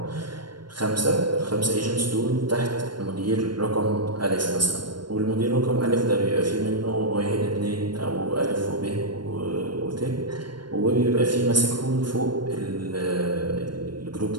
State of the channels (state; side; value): late; left; 0.72 ms